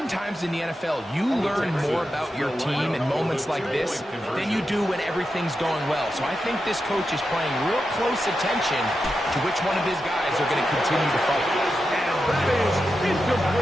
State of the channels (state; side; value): normal; both; correlation 0.89